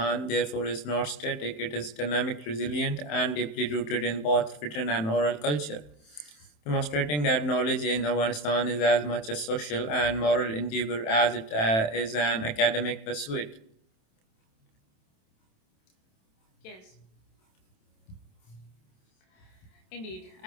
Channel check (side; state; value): right; late; 27 ms